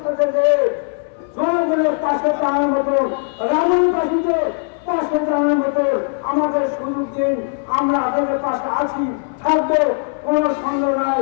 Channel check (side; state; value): right; silent; 67 dB below the other